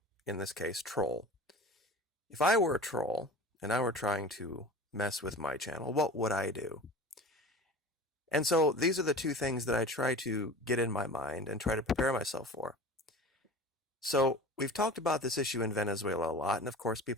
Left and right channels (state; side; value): normal; both; correlation 0.37